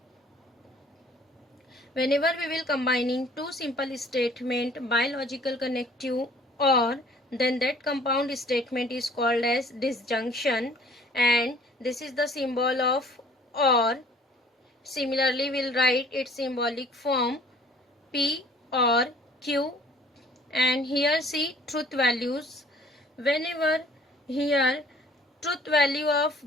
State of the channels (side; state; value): both; normal; correlation 0.54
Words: whenever we will combining two simple statement by logical connective or then that compound statement is called as disjunction and this is the symbol of OR. Similarly we'll write its symbolic form P or Q and here see truth values. Whenever here truth value of